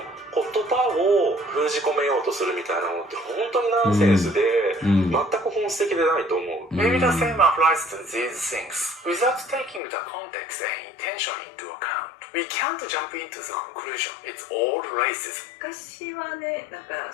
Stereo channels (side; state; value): right; drops out; at 9.8 s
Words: 言葉を封じ込めようとするみたいなのって本当にナンセンスで全く本質的でないと思う。 Maybe the same applies to these things. Without taking the context and intention into account, we can't jump into the conclusion. It's all racism. 昔はねなん